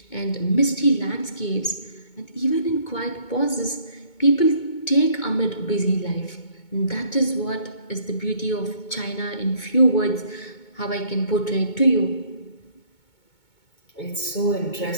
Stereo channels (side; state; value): right; late; 2.2 ms